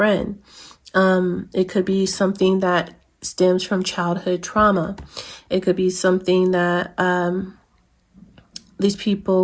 It could be something that stems from childhood trauma. It could be something that these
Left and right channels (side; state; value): both; identical; correlation 1.00